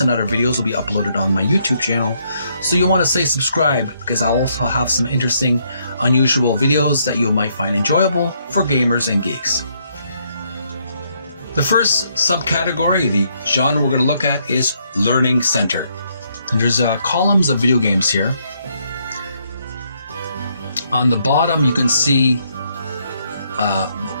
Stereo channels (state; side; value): inverted; both; correlation -0.73